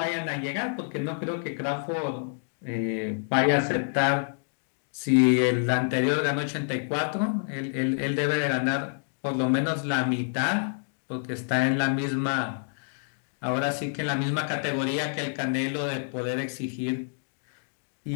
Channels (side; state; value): right; silent; digital silence